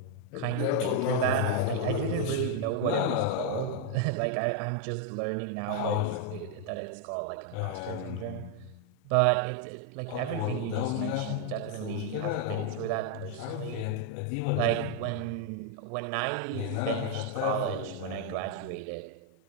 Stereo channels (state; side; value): different; both; correlation 0.00